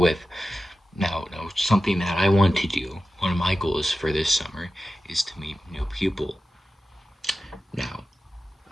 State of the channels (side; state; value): both; normal; correlation 0.93